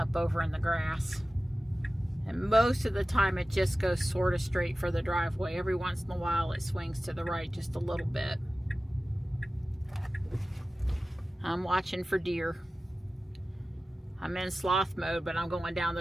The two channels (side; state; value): both; normal; correlation 0.96